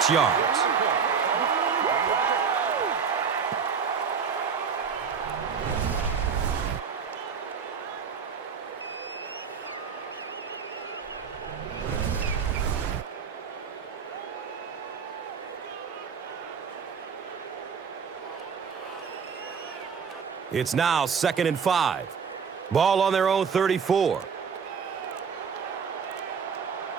yards. It's now 2nd and 5. Ball on their own 34.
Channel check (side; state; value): left; quieter; 6.4 dB